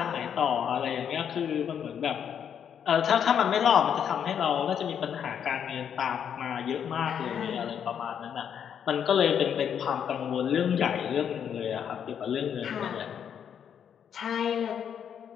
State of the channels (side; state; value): right; quieter; 8.3 dB